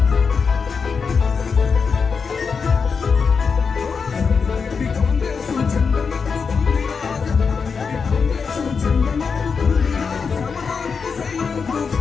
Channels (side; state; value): right; quieter; 5.5 dB